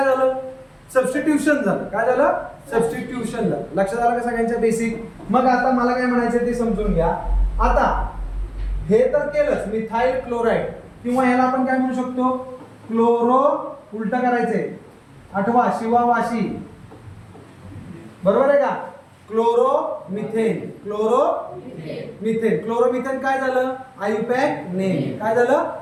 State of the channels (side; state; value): both; identical; correlation 1.00